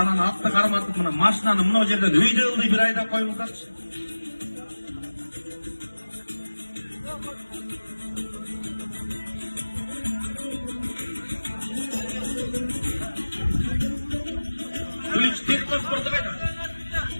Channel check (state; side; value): inverted; both; correlation -1.00